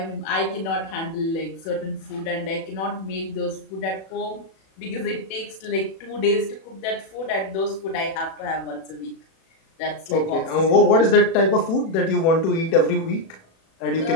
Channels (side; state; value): right; late; 37 ms